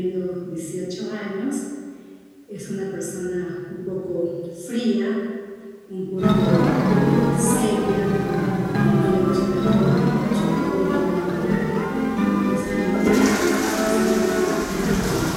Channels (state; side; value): identical; both; correlation 1.00